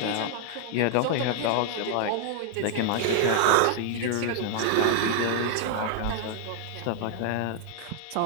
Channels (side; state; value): both; different; correlation -0.01